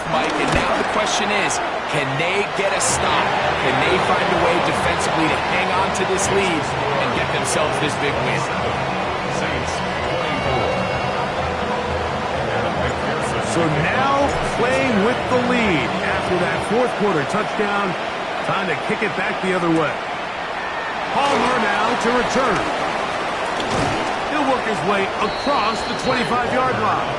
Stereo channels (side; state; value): both; identical; correlation 1.00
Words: Mike, and now the question is, can they get a stop? Can they find a way defensively to hang on to this lead and get themselves this big win? So now playing with the lead after that fourth quarter touchdown, time to kick it back the other way. Palmer now to return. He'll work his way across the 25-yard line.